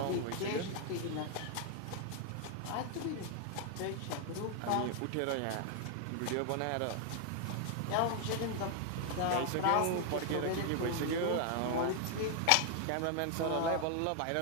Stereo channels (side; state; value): both; different; correlation 0.00